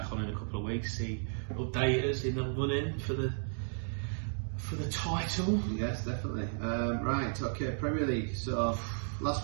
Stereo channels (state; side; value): silent; left; digital silence